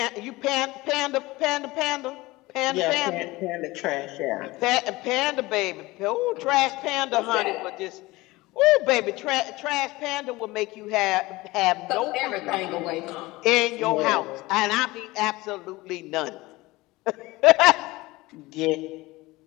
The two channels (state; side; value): quieter; right; 20.5 dB